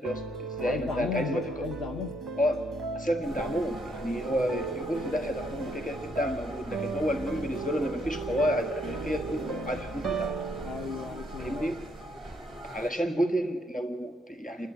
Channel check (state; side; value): normal; both; correlation 0.72